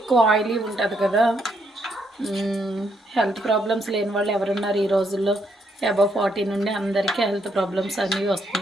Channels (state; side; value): normal; both; correlation 0.75